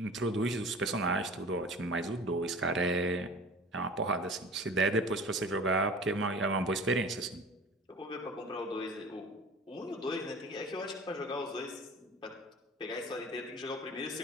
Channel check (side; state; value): both; normal; correlation 0.40